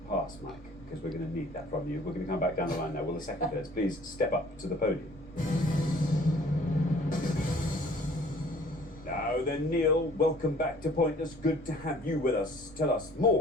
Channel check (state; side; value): noise; right; rumble, 20 dB below the sound